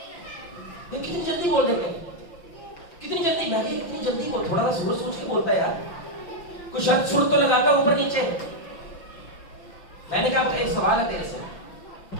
یہ کتنی جلدی بول دیتے ہیں, کتنی جلدی. میں کہ کتنی جلدی بول, تھوڑا سا سوچ کے بولتا ہے یار, کچھ شرط سر تو لگاتا اوپر نیچے. میں نے کہا ایک سوال ہے تیرے سے,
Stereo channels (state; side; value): late; right; 5.8 ms